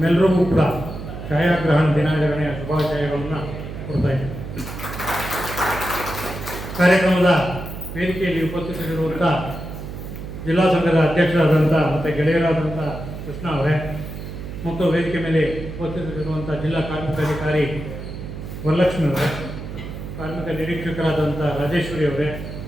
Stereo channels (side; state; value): right; noise; hum, 9 dB below the sound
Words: ಕೂಡ ಛಾಯಾಗ್ರಹಣ ದಿನಾಚರಣೆಯ ಶುಭಾಶಯಗಳನ್ನು ಕೊಡ್ತಾ ಇದ್ದೇನೆ. ಕಾರ್ಯಕ್ರಮದ ವೇದಿಕೆಯಲ್ಲಿ ಉಪಸ್ಥಿತರಿರುವಂಥ ಜಿಲ್ಲಾ ಸಂಘದ ಅಧ್ಯಕ್ಷರಾದಂಥ ಮತ್ತು ಗೆಳೆಯರಾದಂಥ ಕೃಷ್ಣ ಅವರೇ ಮತ್ತು ವೇದಿಕೆ ಮೇಲೆ ಉಪಸ್ಥಿತರಿರುವಂಥ ಜಿಲ್ಲಾ ಕಾರ್ಮಿಕಾಧಿಕಾರಿ ವರಲಕ್ಷ್ಮಿ ಅವರೇ, ಕಾರ್ಮಿಕ ನಿರೀಕ್ಷಕರಾದಂಥ ರಾಜೇಶ್ವರಿ ಅವರೇ